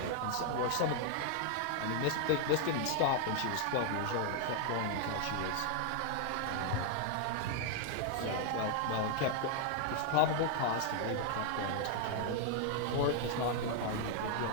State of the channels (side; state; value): both; different; correlation 0.00